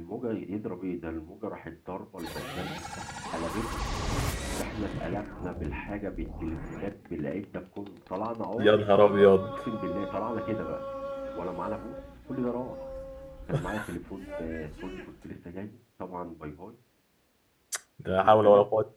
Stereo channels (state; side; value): identical; both; correlation 1.00